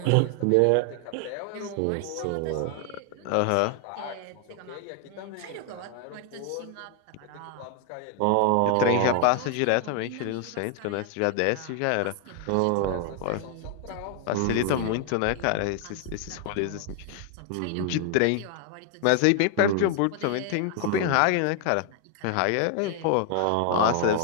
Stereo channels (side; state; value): both; different; correlation 0.00